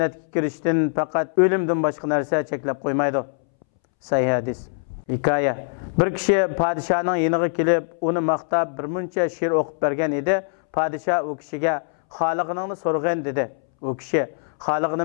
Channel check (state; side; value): silent; right; 63 dB below the other